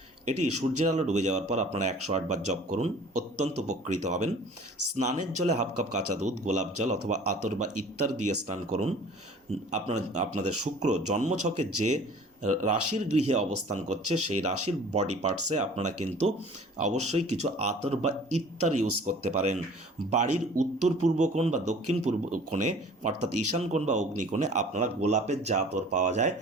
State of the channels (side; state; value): both; normal; correlation 0.47